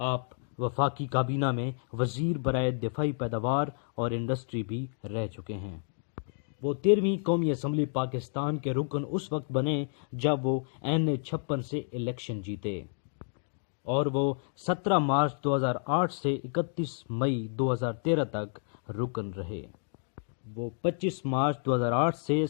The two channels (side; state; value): right; silent; digital silence